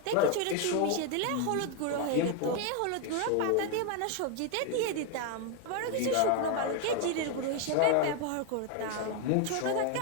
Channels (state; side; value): different; both; correlation 0.01